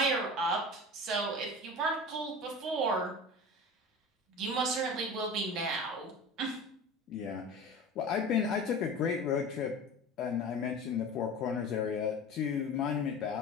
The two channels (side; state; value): both; normal; correlation 0.34